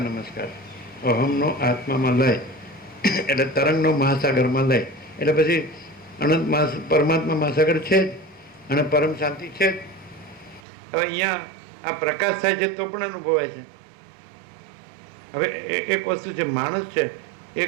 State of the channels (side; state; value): left; drops out; at 10.6 s